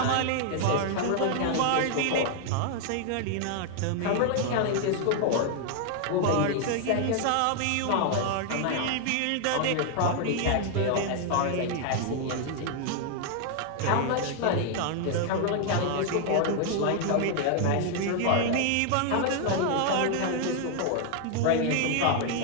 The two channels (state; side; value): different; both; correlation 0.00